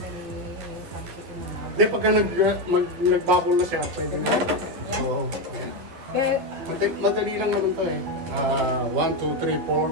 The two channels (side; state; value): left; late; 12 ms